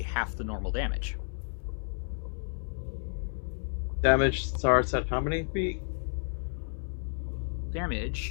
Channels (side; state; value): right; silent; 57 dB below the other